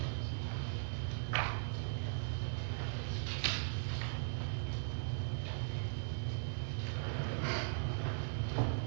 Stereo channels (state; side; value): silent; left; 52 dB below the other